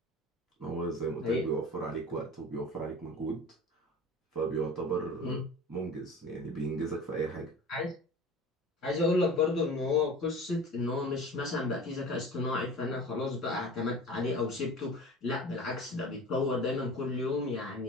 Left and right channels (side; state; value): both; normal; correlation 0.37